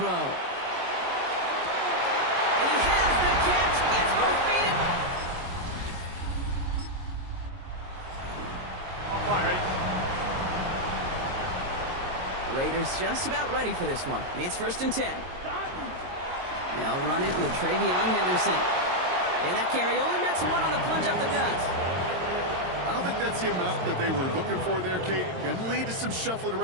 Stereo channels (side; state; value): left; late; 22 ms